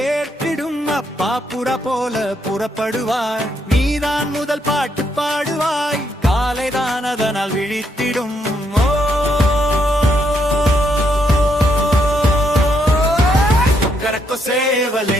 ஏற்றிடும் அப்பா புறா போல புறப்படுவாய் நீதான் முதல் பாட்டு பாடுவாய் காலைதான் அதனால் விழித்திடும் கொக்கரக்கோ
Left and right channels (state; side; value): normal; both; correlation 0.75